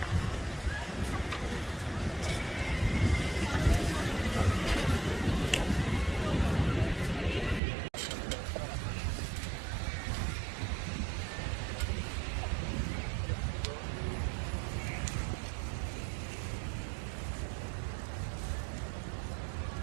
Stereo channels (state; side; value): drops out; left; at 7.6 s